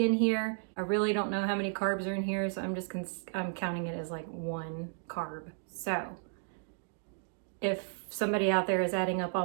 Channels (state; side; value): silent; left; digital silence